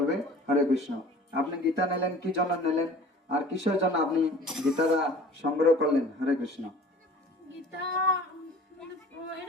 হরে কৃষ্ণ। আপনি গীতা নিলেন কি জন্য নিলেন, আর কিসের জন্য আপনি গীতাটা সংগ্রহ করলেন? হরে কৃষ্ণ। গীতা মানে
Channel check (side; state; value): both; normal; correlation 0.45